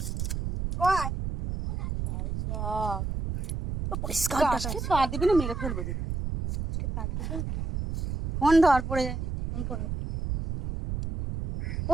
দিবি না, মেরে ফেলবো দিদি। ফোন ধর, পড়ে যায়নি। ফোন পড়ে ও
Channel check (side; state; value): right; noise; rumble, 4 dB below the sound